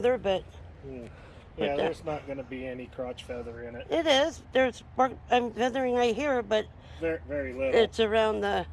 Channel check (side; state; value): both; identical; correlation 1.00